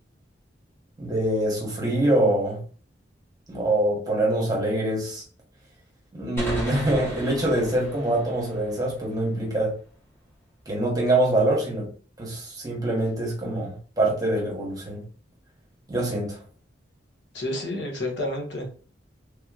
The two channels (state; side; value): normal; both; correlation 0.56